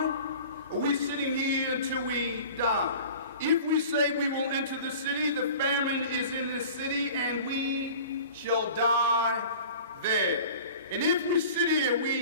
are we sitting here until we die? If we say we will enter the city, the famine is in the city, and we shall die there. And if we sit here,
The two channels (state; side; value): inverted; both; correlation -0.42